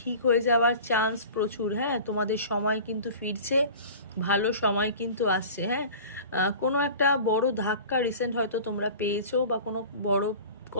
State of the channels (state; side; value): inverted; both; correlation -0.40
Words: হয়ে যাওয়ার চান্স প্রচুর। হ্যাঁ, তোমাদের সময় কিন্তু ফিরছে, ভালো সময় কিন্তু আসছে। হ্যাঁ, কোনো একটা বড় ধাক্কা রিসেন্ট হয়তো তোমরা পেয়েছো, বা কোনো বড়